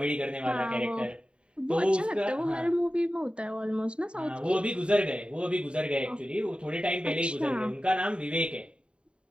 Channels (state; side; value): late; left; 0.054 ms